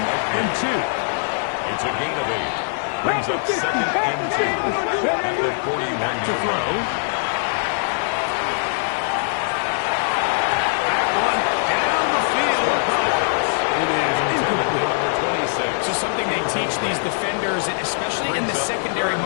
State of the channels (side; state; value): right; silent; digital silence